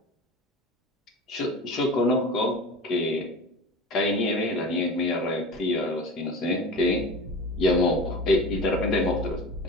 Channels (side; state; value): both; normal; correlation 0.33